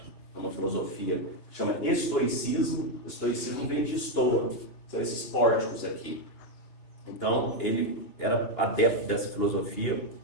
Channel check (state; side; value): late; right; 2.8 ms